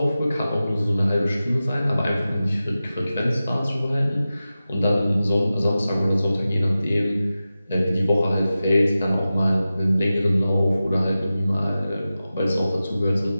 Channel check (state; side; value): inverted; both; correlation -0.94